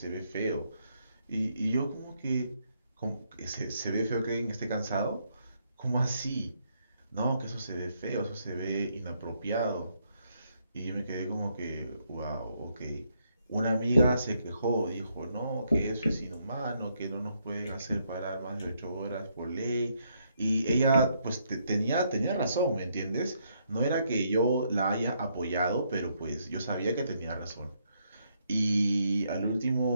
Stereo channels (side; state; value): both; inverted; correlation -0.74